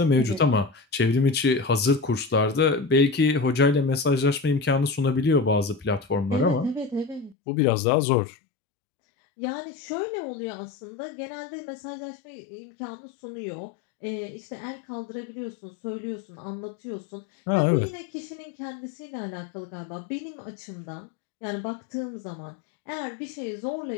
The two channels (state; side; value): drops out; right; at 7.4 s